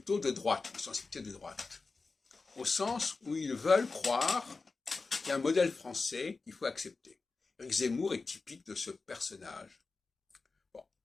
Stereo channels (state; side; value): quieter; right; 4.0 dB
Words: de droite, de sensibilité de droite, au sens où ils veulent croire qu'il y a un modèle français qu'il faut accepter. Éric Zemmour est typique de ce personnage. Bon.